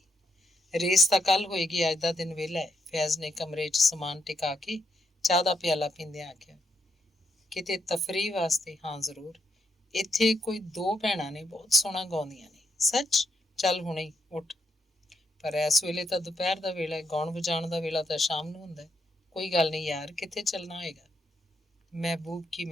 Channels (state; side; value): normal; both; correlation 0.77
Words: ਰੇਸ ਤਾਂ ਕੱਲ੍ਹ ਹੋਏਗੀ, ਅੱਜ ਦਾ ਦਿਨ ਵਿਹਲਾ ਹੈ। ਫੈਜ਼ ਨੇ ਕਮਰੇ 'ਚ ਸਮਾਨ ਟਿਕਾ ਕੇ ਚਾਹ ਦਾ ਪਿਆਲਾ ਪੀਂਦਿਆਂ ਆਖਿਆ। ਕਿਤੇ ਤਫਰੀਹ ਵਾਸਤੇ? ਹਾਂ ਜ਼ਰੂਰ। ਇੱਥੇ ਕੋਈ 2 ਭੈਣਾਂ ਨੇ, ਬਹੁਤ ਸੋਹਣਾ ਗਾਉਂਦੀਆਂ ਨੇ। ਸੱਚ? ਚੱਲ ਹੁਣੇ ਹੀ ਉੱਠ। ਪਰ ਇਸ ਵੇਲੇ ਤਾਂ ਦੁਪਹਿਰ ਦਾ ਵੇਲਾ ਹੈ, ਗਾਉਣ ਵਜਾਉਣ ਦਾ ਵੇਲਾ ਤਾਂ ਸ਼ਾਮ ਨੂੰ ਹੁੰਦਾ। ਕੋਈ ਗੱਲ ਨਹੀਂ ਯਾਰ, ਕਿੱਥੇ ਚੱਲਣਾ ਹੋਏਗਾ? ਮਹਿਬੂਬ ਕੀ